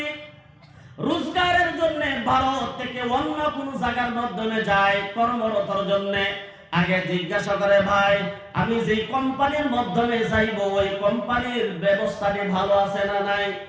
রোজগারের জন্য ভারত থেকে অন্য কোনো জায়গার মাধ্যমে যায় কর্মরতর জন্য, আগে জিজ্ঞাসা করে ভাই আমি যে কোম্পানির মাধ্যমে যাইব ওই কোম্পানির ব্যবস্থাটি ভালো আছে না নাই,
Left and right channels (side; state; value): both; identical; correlation 1.00